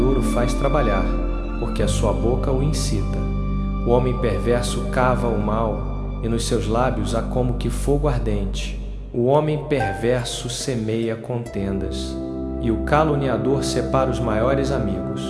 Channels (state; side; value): identical; both; correlation 1.00